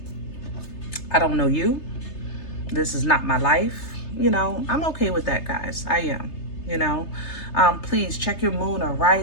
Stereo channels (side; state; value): right; late; 3.3 ms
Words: I don't know you. This is not my life. You know, I'm okay with that, guys. I am. You know, please check your moon or